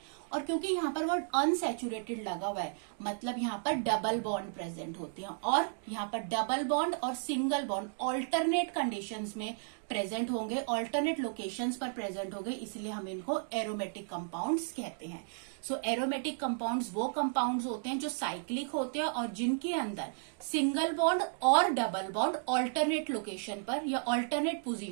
और क्योंकि यहाँ पर वर्ड अनसैचुरेटेड लगा हुआ है, मतलब यहाँ पर डबल बॉन्ड प्रेजेंट होते हैं, और यहाँ पर डबल बॉन्ड और सिंगल बॉन्ड ऑल्टरनेट कंडीशंस में प्रेजेंट होंगे, ऑल्टरनेट लोकेशंस पर प्रेजेंट होंगे, इसलिए हम इनको एरोमेटिक कंपाउंड्स कहते हैं। सो एरोमेटिक कंपाउंड्स वो कंपाउंड्स होते हैं जो साइक्लिक होते हैं और जिनके अंदर सिंगल बॉन्ड और डबल बॉन्ड ऑल्टरनेट लोकेशन पर या ऑल्टरनेट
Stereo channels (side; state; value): left; silent; digital silence